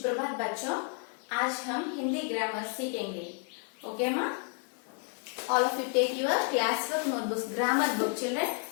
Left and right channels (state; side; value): quieter; right; 39.4 dB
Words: बच्चों, आज हम हिंदी ग्रामर सीखेंगे. ओके माँ? All of you take your classwork notebooks, grammar book, children.